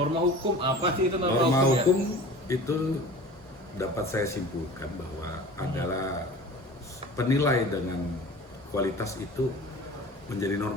apa sih itu norma, Norma hukum? Ya? hukum itu dapat saya simpulkan bahwa adalah penilai dengan kualitas itu menjadi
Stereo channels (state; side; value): normal; both; correlation 0.39